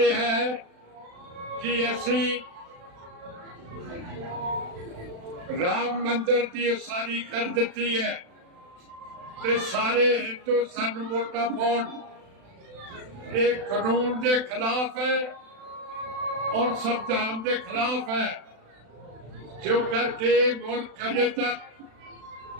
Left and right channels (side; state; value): left; late; 36 ms